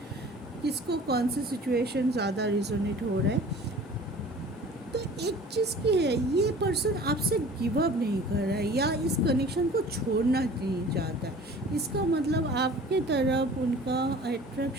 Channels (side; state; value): both; normal; correlation 0.45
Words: किसको कौन से सिचुएशन ज़्यादा रिजोनेट हो रहा है। तो एक चीज़ की है, ये पर्सन आपसे गिव अप नहीं कर रहा है या इस कनेक्शन को छोड़ना नहीं चाहता है। इसका मतलब आपके तरफ उनका